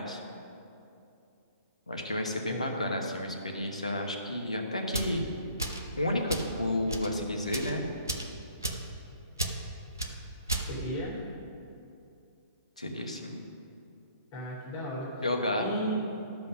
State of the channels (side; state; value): both; inverted; correlation -0.59